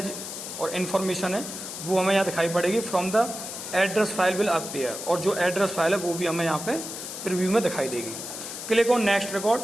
और इन्फॉर्मेशन है वो हमें यहाँ दिखाई पड़ेगी। From the address file will appear, और जो एड्रेस फाइल है वो भी हमें यहाँ पे प्रीव्यू में दिखाई देगी। Click on next record.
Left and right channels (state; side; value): noise; left; hiss, 8 dB below the sound